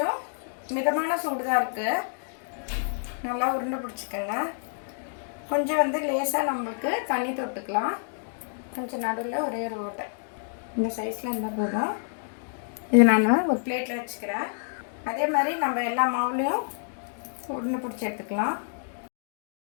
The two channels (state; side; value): silent; right; digital silence